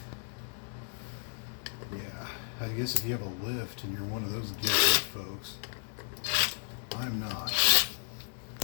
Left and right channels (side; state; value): right; silent; 56 dB below the other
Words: Yeah, I guess if you have a lift and you're one of those gifted folks, I'm not. So